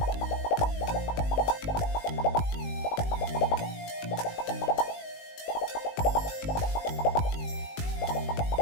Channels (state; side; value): late; right; 19 ms